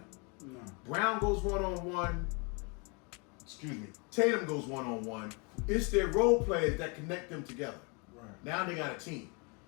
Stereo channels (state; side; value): quieter; right; 32.5 dB